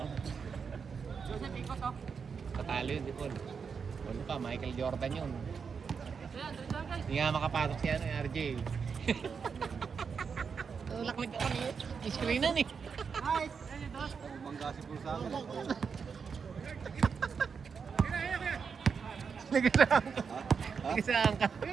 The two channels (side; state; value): left; quieter; 6.0 dB